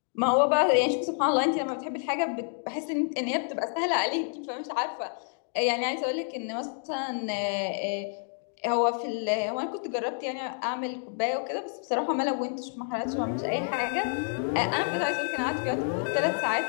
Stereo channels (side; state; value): right; silent; 59 dB below the other